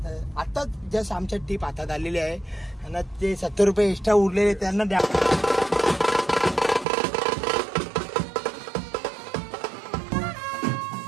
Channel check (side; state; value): left; drops out; at 6.9 s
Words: आता जस्ट आमच्या टीप हातात आलेली आहे आणि ते 70 रुपये एक्स्ट्रा उरलेले त्यांना द्या.